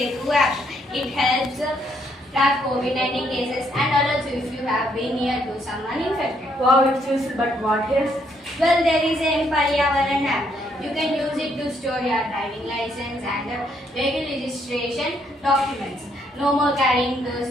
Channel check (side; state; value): both; normal; correlation 0.72